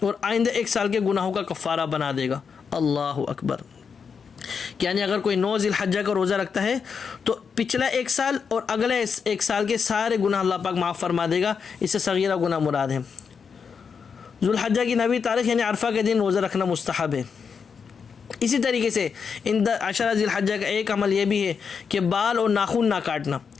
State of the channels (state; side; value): quieter; right; 6.1 dB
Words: اور آئندہ 1 سال کے گناہوں کا کفارہ بنا دے گا۔ اللہ اکبر۔ یعنی اگر کوئی 9 ذی الحجہ کا روزہ رکھتا ہے تو پچھلا 1 سال اور اگلے 1 سال کے سارے گناہ اللہ پاک معاف فرما دے گا، اس سے صغیرہ گناہ مراد ہے۔ ذوالحجہ کی 9ویں تاریخ یعنی عرفہ کے دن روزہ رکھنا مستحب ہے۔ اسی طریقے سے ان عشرہ ذی الحجہ کا ایک عمل یہ بھی ہے کہ بال اور ناخن نہ کاٹنا،